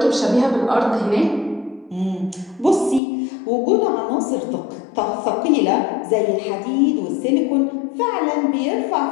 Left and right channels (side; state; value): right; drops out; at 3.0 s